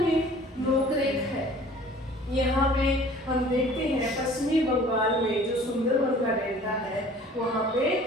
नोकरेक है। यहाँ पे हम देखते हैं पश्चिमी बंगाल में जो सुंदरवन का डेल्टा है वहाँ पे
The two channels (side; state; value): both; normal; correlation 0.49